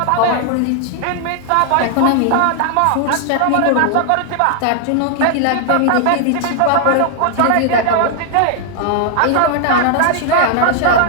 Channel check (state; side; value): different; both; correlation 0.00